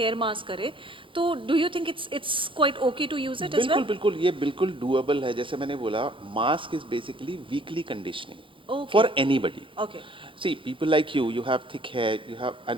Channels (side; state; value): left; late; 0.25 ms